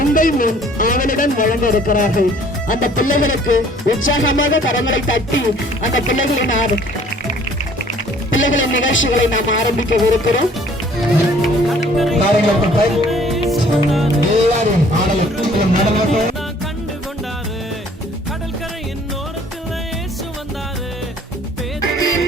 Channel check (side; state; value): both; normal; correlation 0.56